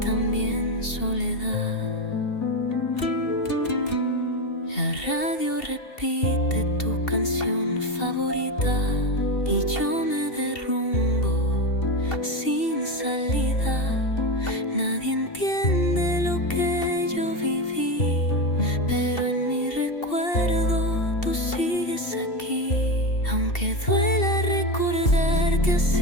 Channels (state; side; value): late; right; 2.7 ms